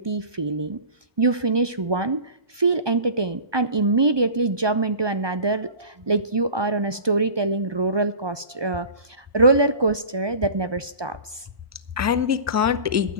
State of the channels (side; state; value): left; late; 1.2 ms